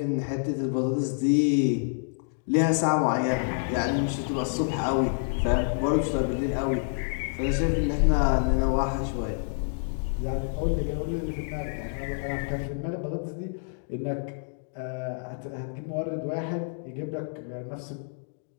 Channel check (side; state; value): right; silent; digital silence